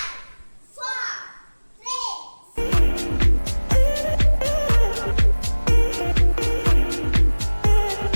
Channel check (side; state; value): both; inverted; correlation -1.00